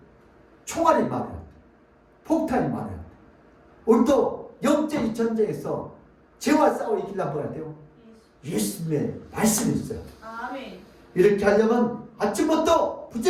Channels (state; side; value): identical; both; correlation 1.00